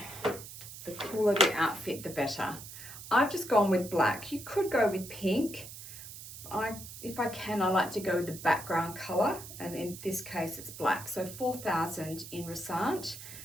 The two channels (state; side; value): noise; right; hiss, 13 dB below the sound